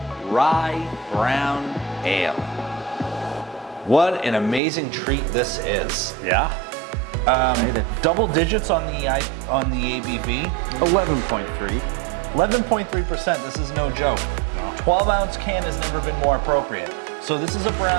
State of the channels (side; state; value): left; drops out; at 4.6 s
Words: Rye Brown Ale. What an amazing treat this is. Yeah. Double digits on the ABV. 11.3. 11.3%. This is no joke. 12-ounce can has never been more appropriate. So this is a